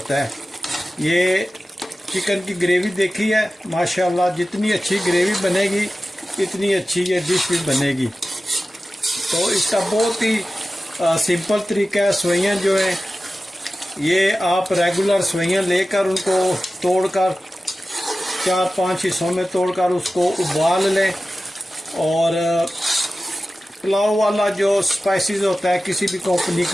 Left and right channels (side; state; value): both; normal; correlation 0.95